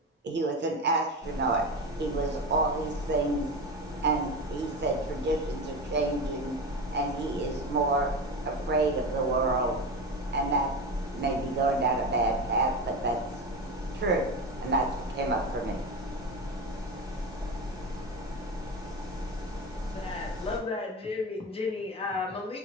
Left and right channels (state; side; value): normal; both; correlation 0.23